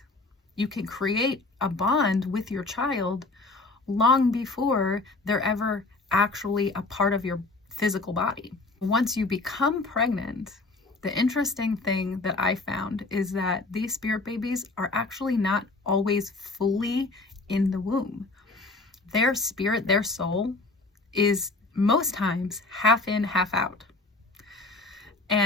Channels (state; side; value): quieter; right; 3.3 dB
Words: You can create a bond with your child long before they're ever actually a part of your physical body. Once you become pregnant, the interesting thing that I found is that these spirit babies are actually not always fully in the womb. Their spirit, their soul, is most times half in, half out.